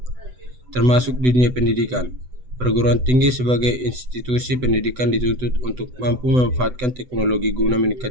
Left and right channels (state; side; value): late; left; 7.9 ms